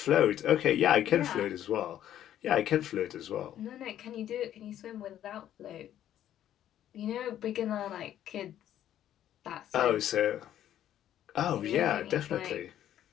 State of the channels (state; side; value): quieter; right; 11.4 dB